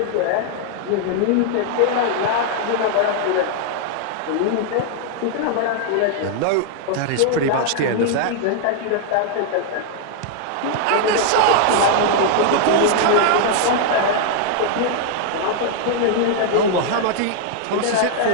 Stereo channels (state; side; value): different; both; correlation 0.00